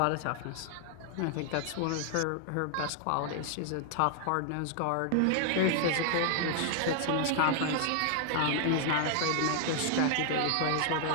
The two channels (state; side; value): different; both; correlation 0.00